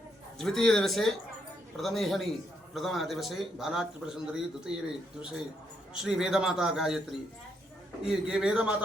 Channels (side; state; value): both; normal; correlation 0.77